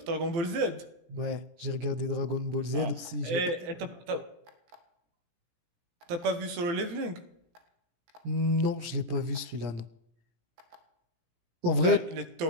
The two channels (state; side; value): late; left; 17 ms